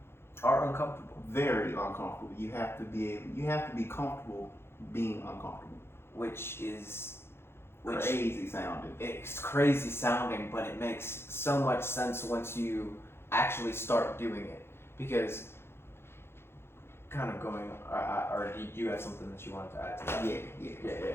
are uncomfortable. Very uncomfortable. You have to be comfortable being uncomfortable. Which is crazy sounding. It's crazy sounding, but it makes so much sense once you actually start doing it. Because kind of going, or do you have something that you wanted to add to that? Yeah.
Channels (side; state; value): right; late; 0.12 ms